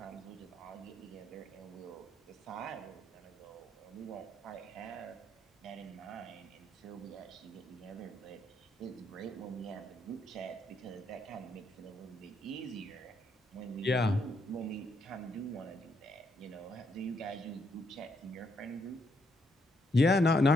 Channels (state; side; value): normal; both; correlation 0.75